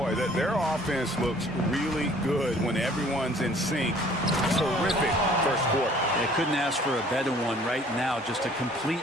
their offense looks really good when everyone's in sync. Terrific first quarter. They couldn't ask for a better one right now. Just a complete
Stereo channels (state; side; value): normal; both; correlation 0.55